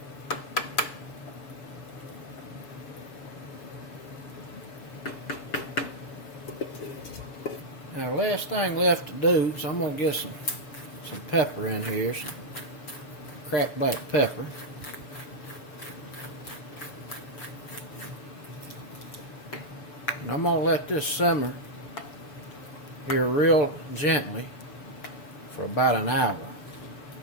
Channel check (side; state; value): right; late; 6.9 ms